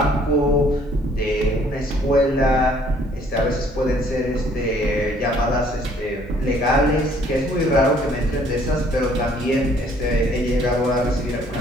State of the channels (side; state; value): both; normal; correlation 0.61